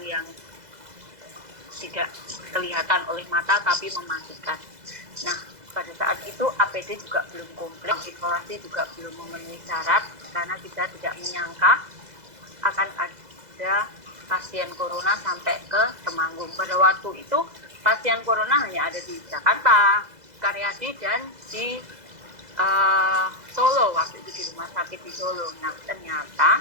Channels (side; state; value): left; late; 2.0 ms